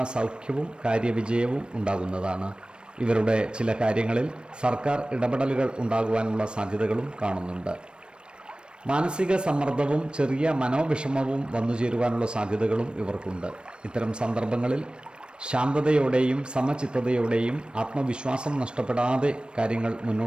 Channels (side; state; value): left; late; 0.054 ms